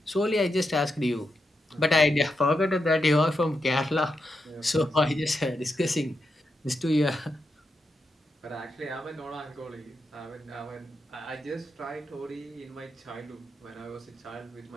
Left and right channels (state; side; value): normal; both; correlation 0.85